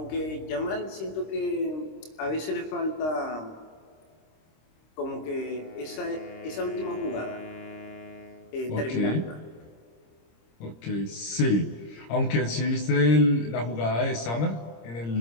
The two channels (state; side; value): late; right; 26 ms